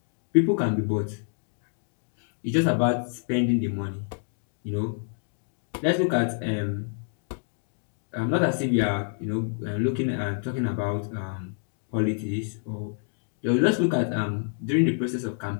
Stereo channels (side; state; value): right; silent; digital silence